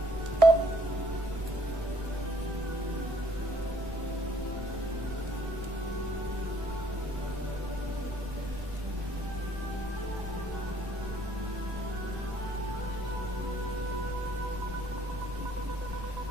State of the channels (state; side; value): late; left; 1.1 ms